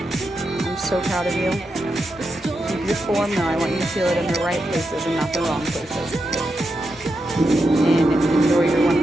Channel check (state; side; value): normal; both; correlation 0.86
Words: so proud of you. Keep your form though. I want you to feel it in the right places and not the wrong places. And enjoy your